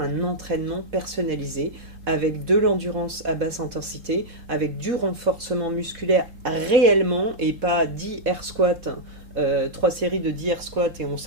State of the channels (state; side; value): late; left; 3.7 ms